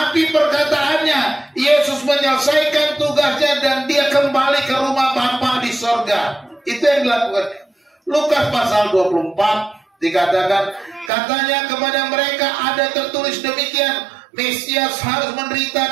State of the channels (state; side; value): drops out; left; at 11.1 s